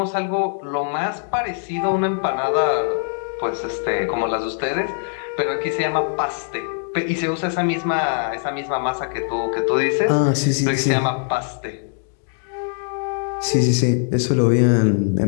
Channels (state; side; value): silent; right; digital silence